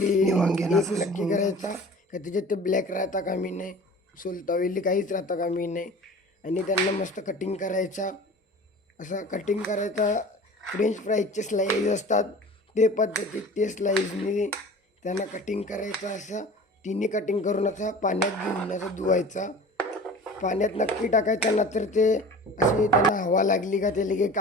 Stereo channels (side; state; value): both; normal; correlation 0.41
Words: वांग्यांना नक्की करायचा का त्याच्यात ते ब्लॅक राहता कामी नाही, सोलतावेली काहीच राहता कामी नाही. आणि त्यांना मस्त कटिंग करायचा, असा कटिंग करायचा. फ्रेंच फ्राईजचे स्लाईज असतात ते पद्धतीत ते स्लाईजनी त्यांना कटिंग करायचं. असं तिन्ही कटिंग करून असं पाण्यात घेऊन असं धुवायचा. पाण्यात नक्की टाकायचं ना, तर ते असे त्यांना हवा लागली का ते लगे